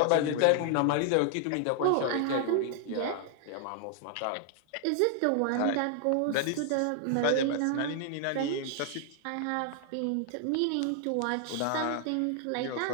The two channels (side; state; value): both; different; correlation 0.00